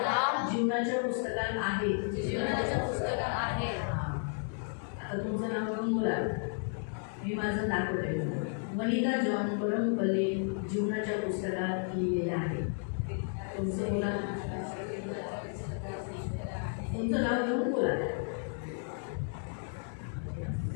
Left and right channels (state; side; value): silent; right; 56 dB below the other